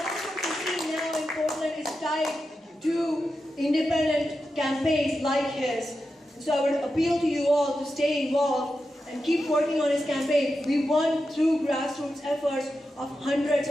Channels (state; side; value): normal; both; correlation 0.89